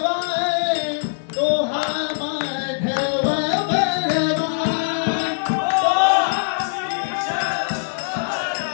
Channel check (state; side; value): silent; right; digital silence